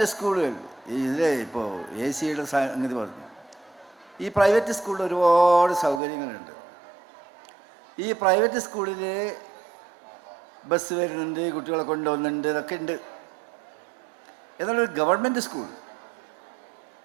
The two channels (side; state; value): left; drops out; at 6.0 s